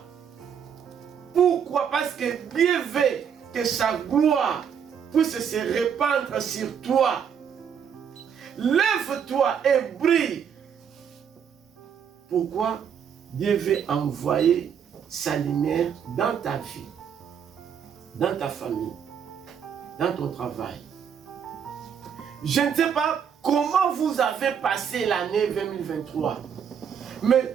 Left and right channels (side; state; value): left; quieter; 7.7 dB